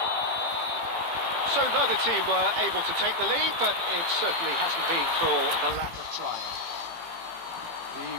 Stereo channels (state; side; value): late; left; 18 ms